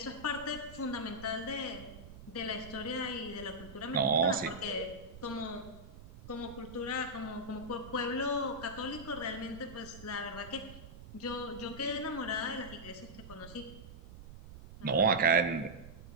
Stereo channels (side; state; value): right; noise; rumble, 15 dB below the sound